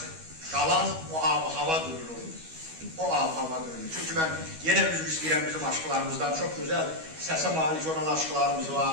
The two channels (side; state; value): left; late; 12 ms